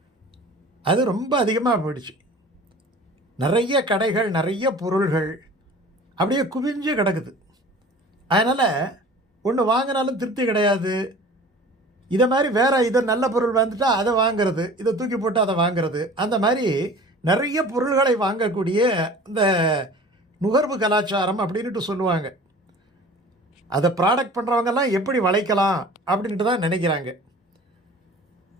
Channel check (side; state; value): both; normal; correlation 0.43